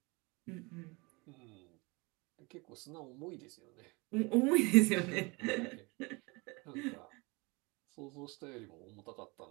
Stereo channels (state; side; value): quieter; left; 26.9 dB